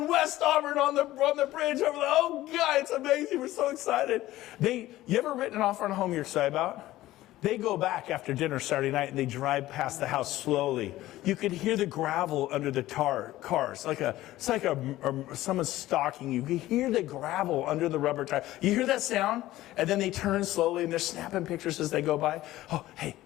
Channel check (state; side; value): quieter; right; 15.8 dB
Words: West Auburn, on the bridge over the. Oh God, it's amazing. We're so excited. You ever written an offer on a home you're excited about? They go back after dinner Saturday night and they drive past the house slowly. You could hear the gravel under the cars. It's like someone's stalking you. You hear the gravel under the rubber tire. You hear that sound? And then they turn slowly and they're snapping pictures as they go by. Oh, hey,